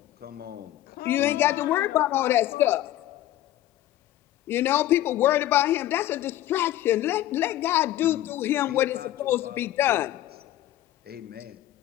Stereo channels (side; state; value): right; quieter; 13.9 dB